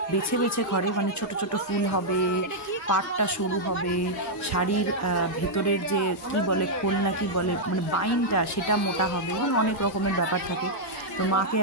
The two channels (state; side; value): normal; both; correlation -0.06